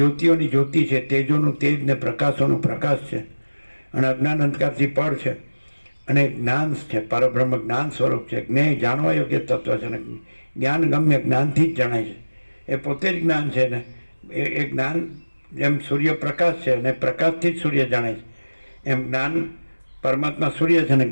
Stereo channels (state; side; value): inverted; both; correlation -1.00